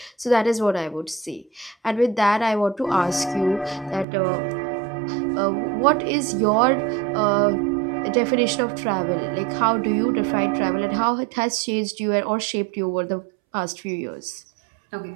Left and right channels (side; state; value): left; drops out; at 4.0 s